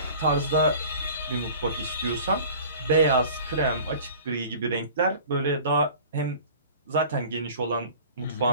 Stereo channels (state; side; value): inverted; both; correlation -0.44